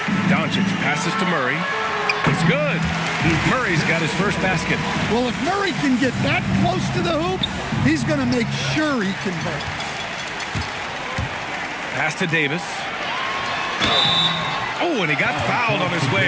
Doncic passes to Murray. It's good. Murray's got his first basket. Well, if Murray can get that close to the hoop, he's going to make sure he converts. Pass to Davis. Oh, and he got fouled on his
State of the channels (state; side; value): identical; both; correlation 1.00